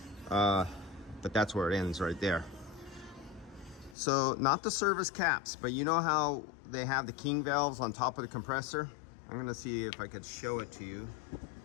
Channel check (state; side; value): drops out; right; at 4.0 s